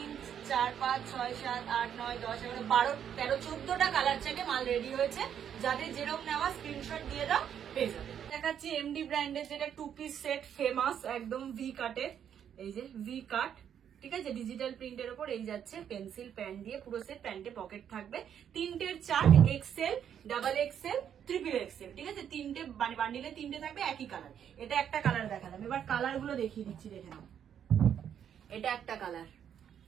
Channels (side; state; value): left; quieter; 8.9 dB